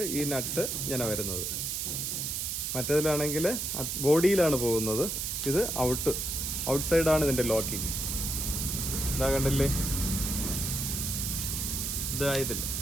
ഈ നട്ട് ഇങ്ങനെ വരുന്നത്. മറ്റേതിലാണെങ്കിൽ ബോഡിയിലാണ് പോകുന്നത്. ഇത് ഔട്ട് സൈഡാണ് ഇതിൻ്റെ ലോക്കിങ്. ഇതാ കണ്ടില്ലേ, ഇതാ ഇതിൽ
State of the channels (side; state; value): right; noise; hiss, 2 dB below the sound